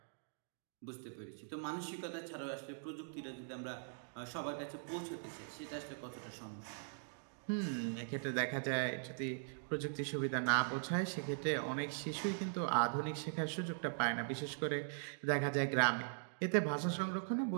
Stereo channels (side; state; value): left; silent; digital silence